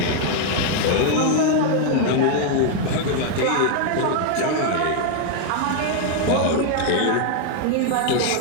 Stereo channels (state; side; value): different; both; correlation 0.00